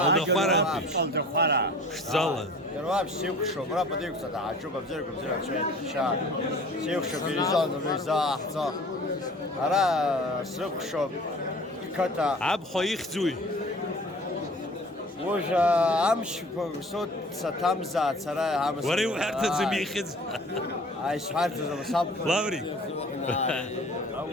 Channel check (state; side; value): normal; both; correlation 0.46